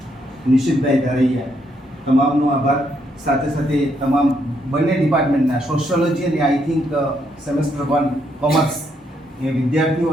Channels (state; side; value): normal; both; correlation 0.75